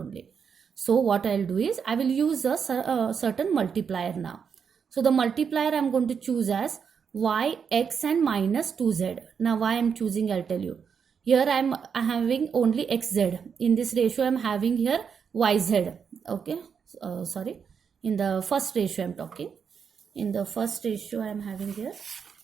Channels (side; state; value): left; quieter; 6.7 dB